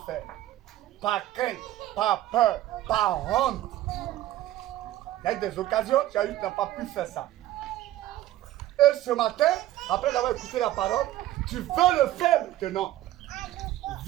faire. Par crainte, par peur, par honte. Il y a eu des occasions, tu n'as pas pu faire ça. Et ce matin, après avoir écouté la parole, tu veux le faire maintenant.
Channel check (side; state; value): left; quieter; 14.4 dB